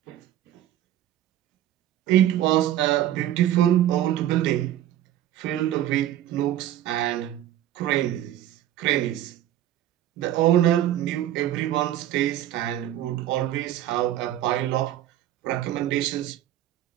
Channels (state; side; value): quieter; left; 12.5 dB